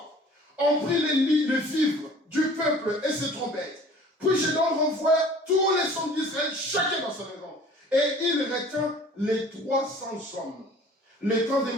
On prit les vivres du peuple et ses trompettes. Puis Gédéon renvoie tous les hommes d'Israël, chacun dans sa maison. Et il retint les 300 hommes. Les camps des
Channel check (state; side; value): normal; both; correlation 0.48